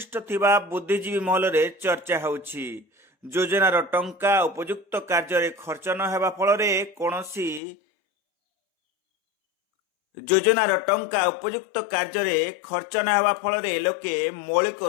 थिबा बुद्धिजीवी महल रे चर्चा होउछि। योजनार टंका उपयुक्त कार्य खर्च न हेबा फलरे कोनोसी योजनार टंका उपयुक्त कार्य खर्च न हेबा फलरे लोके मौलिक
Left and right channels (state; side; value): drops out; right; at 7.6 s